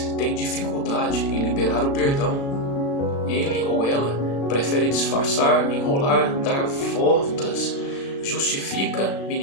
tem dificuldade em liberar o perdão. Ele ou ela prefere disfarçar, enrolar, dar voltas, justifica,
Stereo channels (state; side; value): late; right; 36 ms